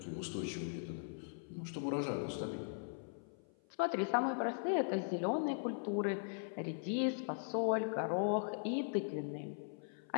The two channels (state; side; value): silent; right; 51 dB below the other